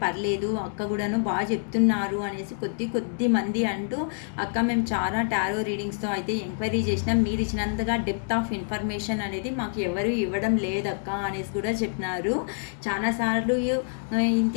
పర్లేదు అక్క కూడాను బాగా చెప్తున్నారు అనేసి కొద్ది మంది అంటూ అక్క మేము చాలా టారో రీడింగ్స్తో అయితే ఎంక్వైరీ చేసినాం, మీరు ఇచ్చినంతగా డెప్త్ ఆఫ్ ఇన్ఫర్మేషన్ అనేది మాకు ఎవరు ఇవ్వడం లేదక్క అనేసి కూడా చెప్పినారు. చాలాసార్లు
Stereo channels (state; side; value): silent; right; digital silence